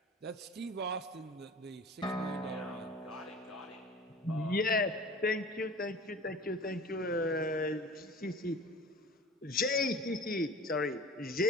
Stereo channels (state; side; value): normal; both; correlation 0.40